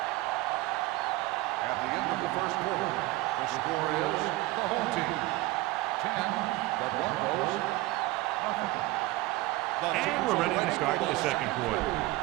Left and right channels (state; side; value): quieter; left; 19.1 dB